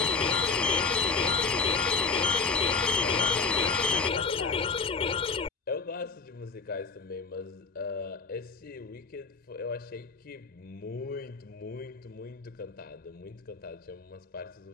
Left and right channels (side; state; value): right; quieter; 4.4 dB